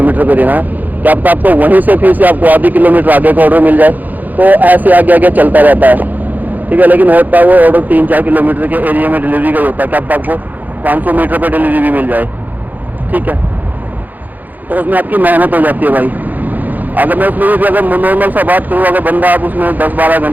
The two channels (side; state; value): left; late; 0.083 ms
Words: पे देना है, क्या पता आपको वहीं से फिर से आपको आधी किलोमीटर आगे का ऑर्डर मिल जाए। तो ऐसे आगे आगे चलता रहता है। ठीक है, लेकिन होता है वो ऑर्डर 3-4 किलोमीटर के एरिया में डिलीवरी का होता है, क्या पता आपको 500 मीटर पर डिलीवरी भी मिल जाए। ठीक है, तो उसमें आपकी मेहनत हो जाती है भाई। अगर मैं उसमें भी अगर नॉर्मल सा बात करूँ, अगर बंदा आप उसमें 10-12